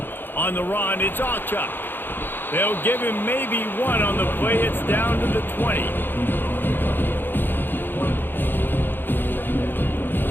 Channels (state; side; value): late; right; 0.097 ms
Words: On the run, it's Auchuk. They'll give him maybe one on the play. It's down to the 20.